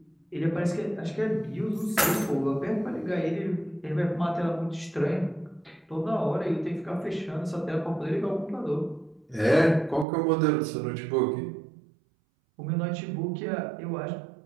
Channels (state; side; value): drops out; left; at 10.1 s